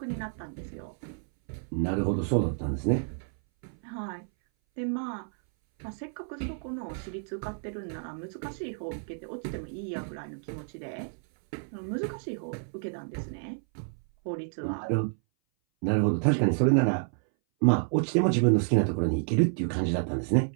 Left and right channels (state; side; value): silent; left; 58 dB below the other